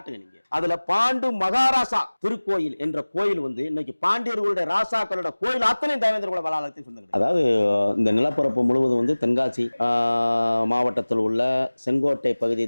நீங்க அதுல பாண்டு மகாராசா திருக்கோயில் என்ற கோயில் வந்து இன்னைக்கு பாண்டியர்களுடைய ராசாக்களோட கோயில் அத்தனை தேவேந்திர குல வேளாளத்தை சொந்தங்கள். அதாவது இந்த நிலப்பரப்பு முழுவதும் வந்து தென்காசி மாவட்டத்தில் உள்ள செங்கோட்டை பகுதி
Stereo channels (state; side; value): inverted; both; correlation -1.00